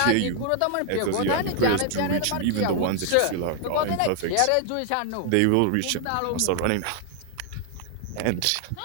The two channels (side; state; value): both; different; correlation 0.00